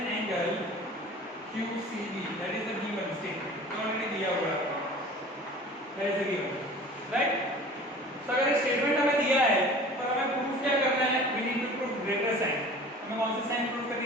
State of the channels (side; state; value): both; normal; correlation 0.43